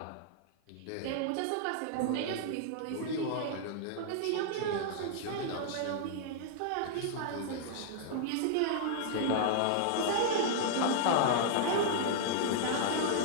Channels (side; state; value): both; different; correlation -0.01